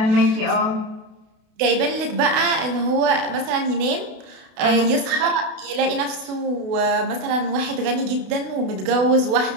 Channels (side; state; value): left; late; 32 ms